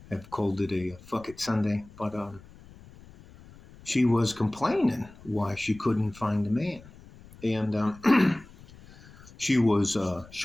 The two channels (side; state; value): left; noise; rumble, 21 dB below the sound